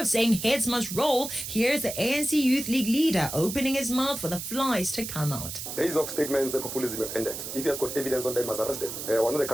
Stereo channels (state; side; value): noise; right; hiss, 7 dB below the sound